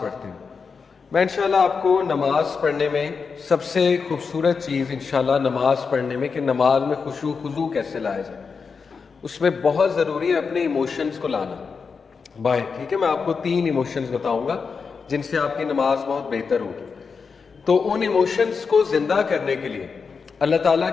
پڑھتے ہیں. میں انشاءاللہ آپ کو نماز پڑھنے میں سب سے خوبصورت چیز انشاءاللہ نماز پڑھنے میں کہ نماز میں خشوع خضوع کیسے لایا جائے اس میں بہت ضروری ہے اپنے ایموشنز کو لانا باہر. ٹھیک ہے, میں آپ کو 3 ایموشنز بتاؤں گا جن سے آپ کی نماز بہت بہتر ہوگی. تو ان ایموشنز کو زندہ کرنے کے لیے اللہ تعالیٰ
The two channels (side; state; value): right; quieter; 5.3 dB